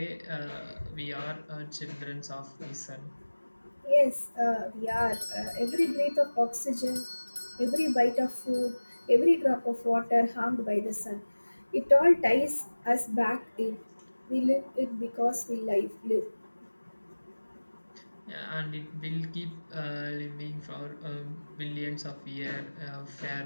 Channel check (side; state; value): both; inverted; correlation -1.00